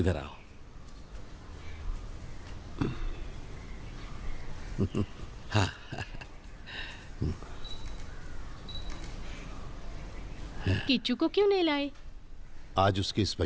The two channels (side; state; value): both; identical; correlation 1.00